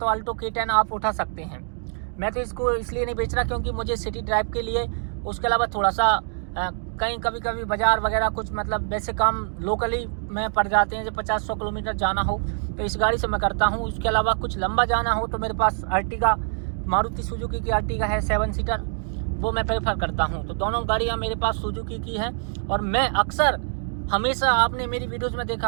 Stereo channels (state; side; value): silent; left; 62 dB below the other